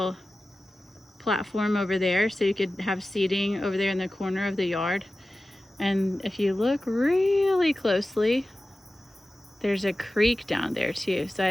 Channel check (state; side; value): normal; both; correlation 0.95